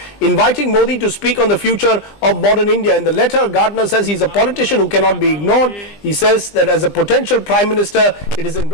inviting Modi to speak on the future of modern India. In the letter, Gardiner says he's a politician who cannot be ignored. He says that as a potential Prime Minister, it is in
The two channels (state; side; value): late; right; 20 ms